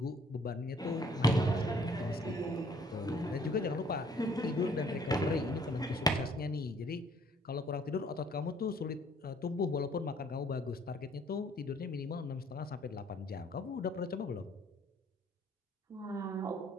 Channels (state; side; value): normal; both; correlation 0.60